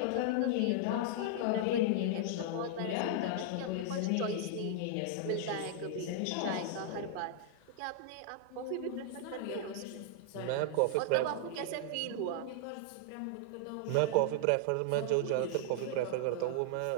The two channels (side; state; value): both; different; correlation -0.01